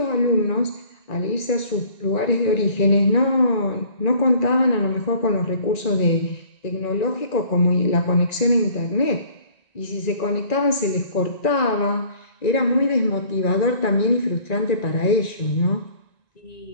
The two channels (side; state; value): right; late; 1.9 ms